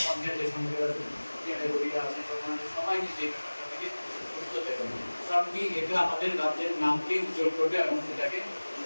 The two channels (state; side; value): inverted; both; correlation -1.00